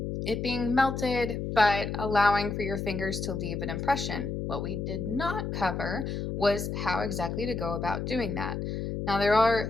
it being melted, but allowing for your fingers to leave an impression. What we did not cover was how exactly to go about doing that. Now, there are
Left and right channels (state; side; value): noise; left; hum, 3 dB below the sound